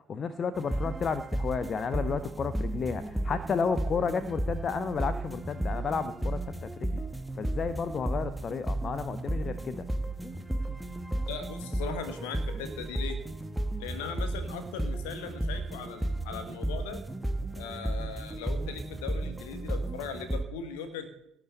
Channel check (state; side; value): normal; both; correlation 0.82